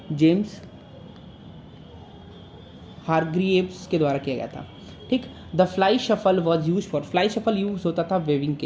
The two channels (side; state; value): both; identical; correlation 1.00